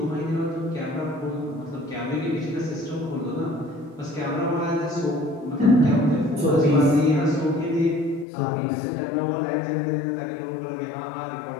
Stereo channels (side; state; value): right; drops out; at 8.2 s